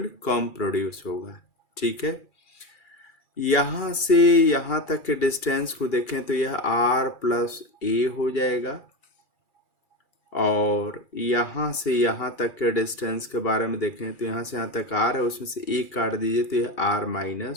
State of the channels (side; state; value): right; late; 2.3 ms